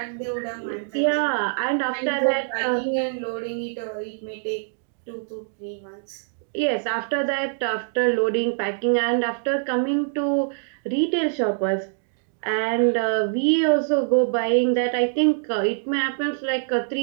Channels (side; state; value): left; silent; digital silence